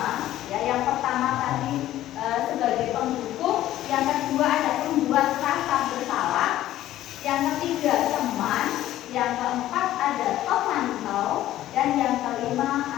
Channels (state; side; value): quieter; right; 13.8 dB